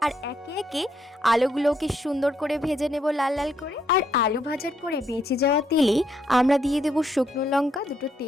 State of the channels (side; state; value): both; normal; correlation 0.75